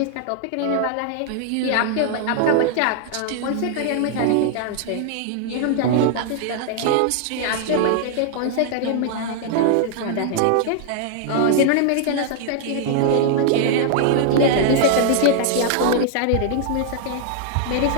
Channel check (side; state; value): both; different; correlation -0.01